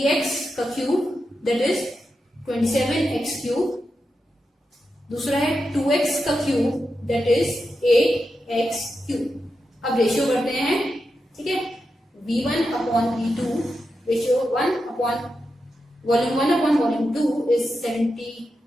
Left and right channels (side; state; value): both; normal; correlation 0.88